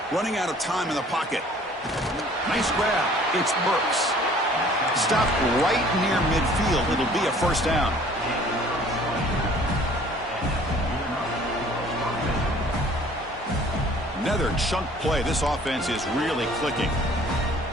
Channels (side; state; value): both; normal; correlation 0.53